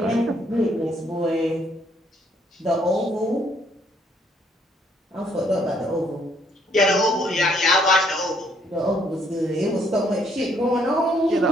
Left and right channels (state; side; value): normal; both; correlation 0.68